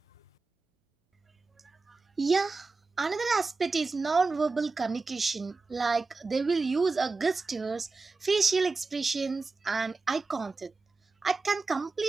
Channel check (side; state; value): left; quieter; 3.9 dB